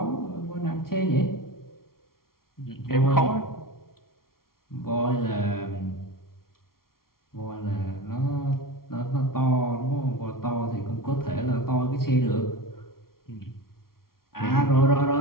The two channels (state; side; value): late; right; 0.93 ms